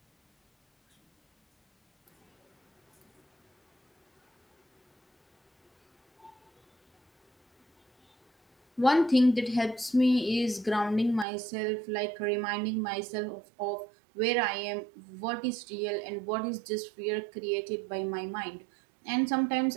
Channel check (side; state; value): left; drops out; at 11.2 s